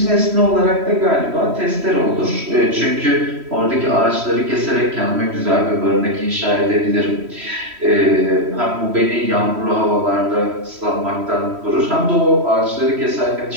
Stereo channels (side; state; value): left; late; 3.1 ms